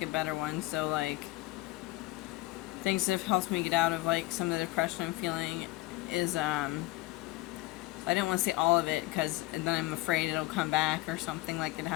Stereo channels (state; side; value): quieter; right; 19.5 dB